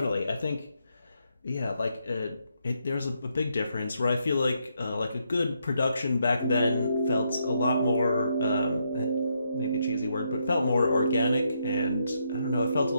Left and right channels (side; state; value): both; inverted; correlation -0.77